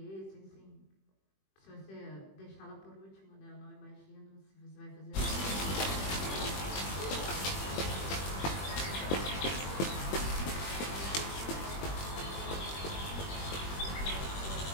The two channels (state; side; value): late; right; 21 ms